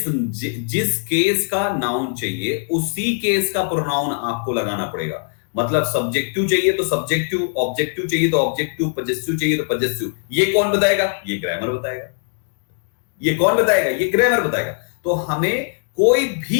केस का नाउन चाहिए उसी केस का प्रोनाउन आपको लगाना पड़ेगा। मतलब सब्जेक्टिव चाहिए तो सब्जेक्टिव, ऑब्जेक्टिव चाहिए तो ऑब्जेक्टिव, पजेसिव चाहिए तो पजेसिव। ये कौन बताएगा? ये ग्रामर बताएगा। ये कौन बताएगा? ये ग्रामर बताएगा। तो हमें कोई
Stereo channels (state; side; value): silent; right; digital silence